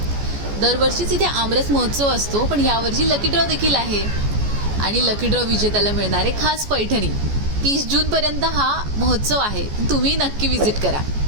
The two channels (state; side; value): late; left; 14 ms